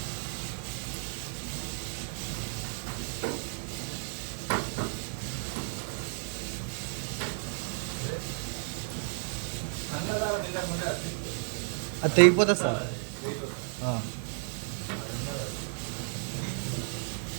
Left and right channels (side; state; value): left; silent; 56 dB below the other